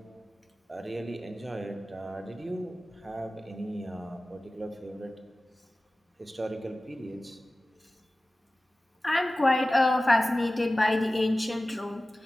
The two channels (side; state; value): both; normal; correlation 0.96